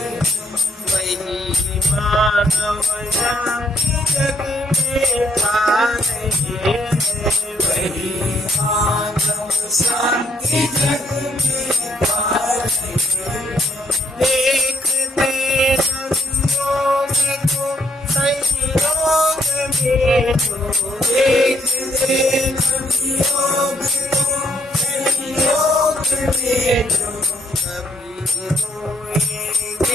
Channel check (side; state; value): both; normal; correlation 0.69